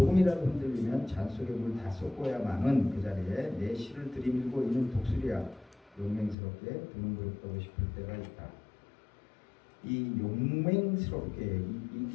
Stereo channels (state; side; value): drops out; right; at 6.4 s